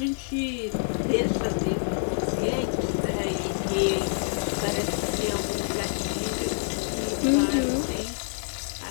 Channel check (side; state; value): right; silent; digital silence